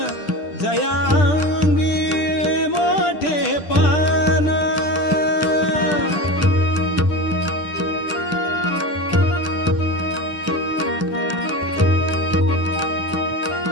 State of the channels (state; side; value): late; right; 10 ms